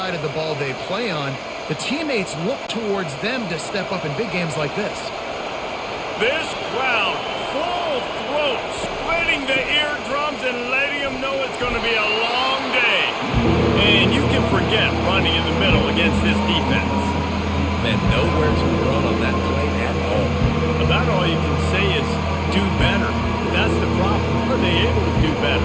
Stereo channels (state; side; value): identical; both; correlation 1.00